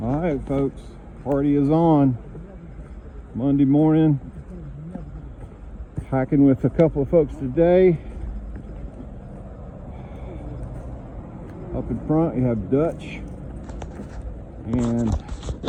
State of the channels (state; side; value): identical; both; correlation 1.00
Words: All right, folks, party is on. Monday morning, hiking with a couple of folks today. Up in front, you have Dutch, and